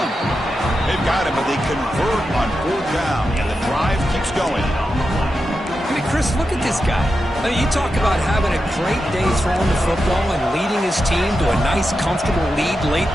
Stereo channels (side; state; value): both; normal; correlation 0.89